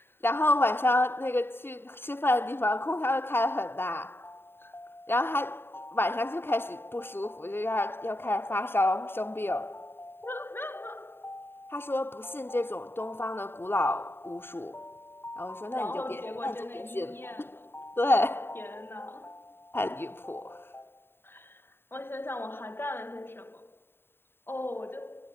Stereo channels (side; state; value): right; late; 0.11 ms